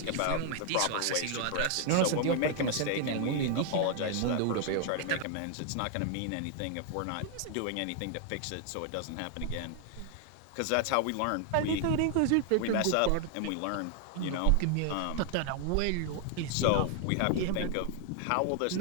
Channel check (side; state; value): both; different; correlation 0.00